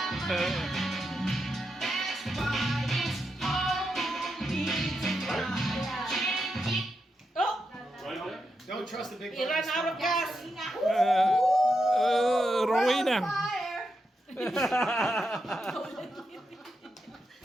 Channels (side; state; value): both; normal; correlation 0.85